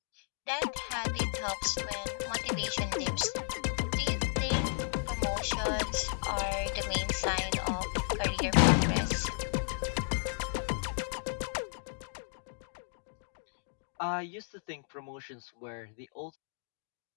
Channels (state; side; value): silent; right; digital silence